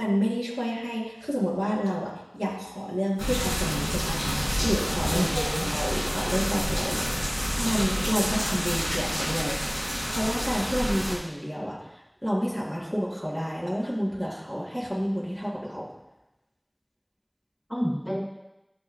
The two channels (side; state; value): both; identical; correlation 1.00